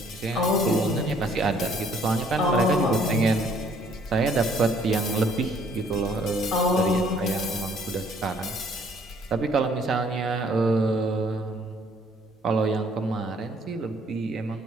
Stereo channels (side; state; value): both; normal; correlation 0.62